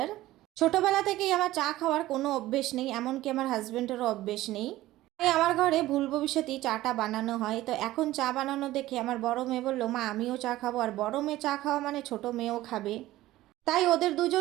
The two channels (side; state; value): left; quieter; 16.2 dB